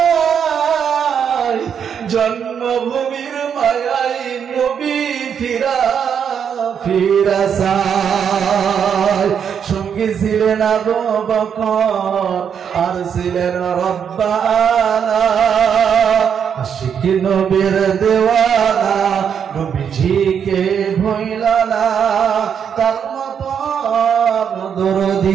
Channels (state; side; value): quieter; left; 7.7 dB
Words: জন্মভূমির মায়াই নবী ফিরা ফিরা চায় সঙ্গী ছিলেন আবু বকর আর ছিলেন রব্বানা আশিক নবীর দেওয়ানা নবীজিকে ভুইলা না তার মতো